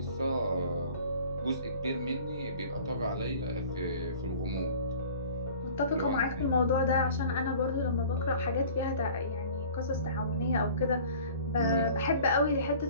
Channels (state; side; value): inverted; both; correlation -0.47